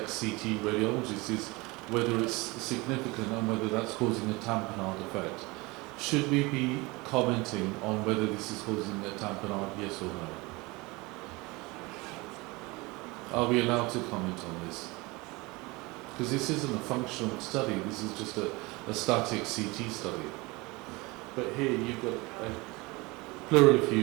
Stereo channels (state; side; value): quieter; left; 24.1 dB